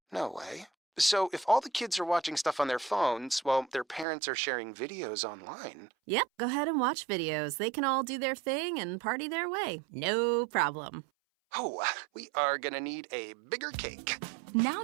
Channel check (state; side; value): drops out; left; at 4.0 s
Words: No way. So if all the kids are watching stuff on their phones, well, their parents are sharing videos online. Yep, go ahead and watch videos. They can all do their thing and party their way. No problem. Oh, we are gonna need a bigger cake. Now